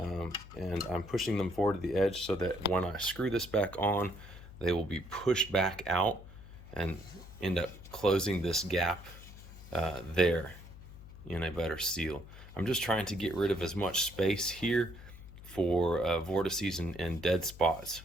I'm pushing them forward to the edge so that when I screw this back on, they will be pushed back out and end up closing this gap there in a better seal. I'm just trying to get rid of as much space here for vortices and dead spots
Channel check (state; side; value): noise; left; hum, 16 dB below the sound